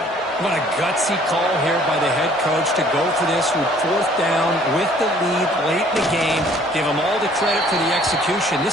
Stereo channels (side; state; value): both; normal; correlation 0.57